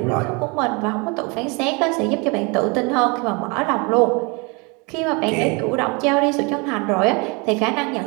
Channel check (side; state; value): left; quieter; 29.7 dB